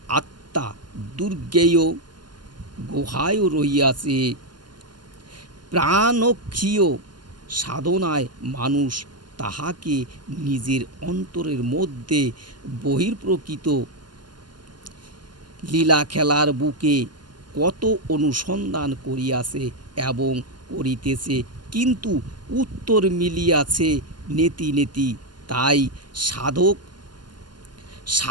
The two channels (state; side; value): late; left; 0.71 ms